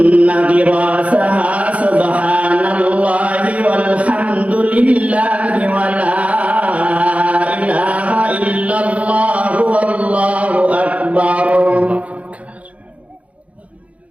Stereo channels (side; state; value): left; late; 0.066 ms